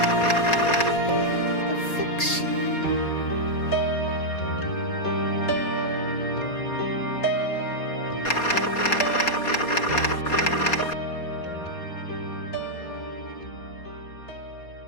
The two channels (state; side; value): late; right; 4.2 ms